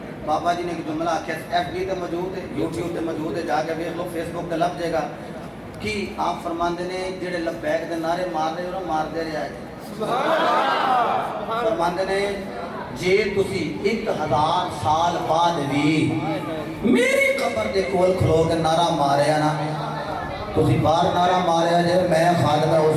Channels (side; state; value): both; identical; correlation 1.00